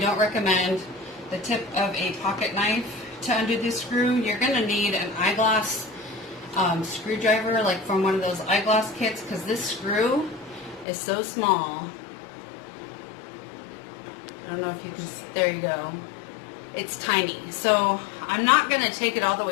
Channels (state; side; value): drops out; right; at 10.9 s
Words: recommend, the tip of a pocket knife to undo this screw. You're going to need an eyeglass screwdriver, like from one of those eyeglass kits, because this screw is so small. I don't know if you can, there you go. It's tiny. So I'm not going to take it all the